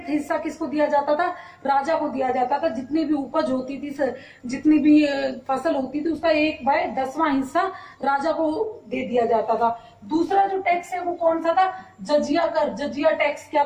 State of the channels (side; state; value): both; identical; correlation 1.00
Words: हिस्सा किसको दिया जाता था, राजा को दिया जाता था। जितनी भी उपज होती थी, जितनी भी फसल होती थी, उसका 1/10वां हिस्सा राजा को दे दिया जाता था। दूसरा जो टैक्स है वो कौन सा था, जजिया कर। जजिया टैक्स क्या